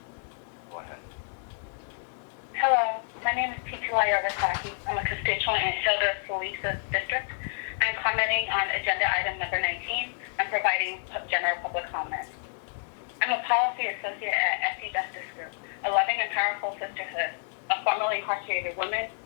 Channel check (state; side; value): silent; right; digital silence